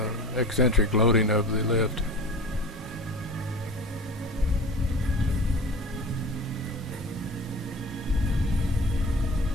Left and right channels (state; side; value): normal; both; correlation 0.35